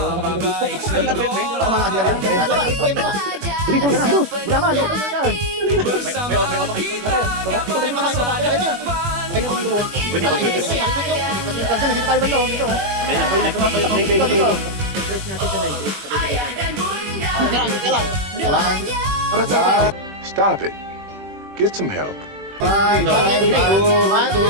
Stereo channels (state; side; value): late; left; 21 ms